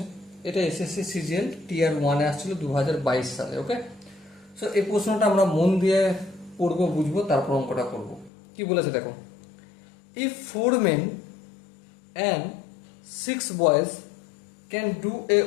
এটা এসএসসি সিজিএল টিয়ার 1-এ আসছিল 2022 সালে। ওকে, সো এই প্রশ্নটা আমরা মন দিয়ে পড়বো, বুঝবো, তারপর অঙ্কটা করবো। কি বলেছে দেখো, if 4 men and 6 boys can do a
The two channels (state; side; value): drops out; right; at 8.3 s